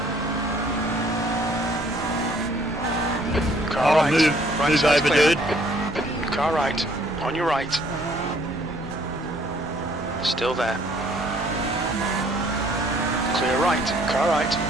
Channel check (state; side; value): normal; both; correlation 0.61